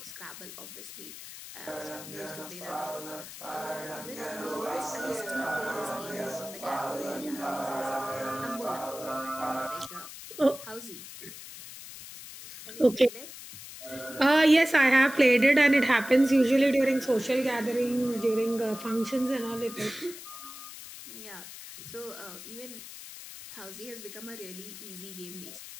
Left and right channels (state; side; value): noise; left; hiss, 13 dB below the sound